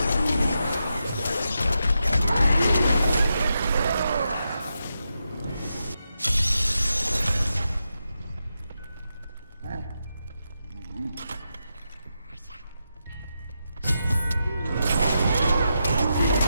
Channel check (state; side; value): inverted; both; correlation -0.86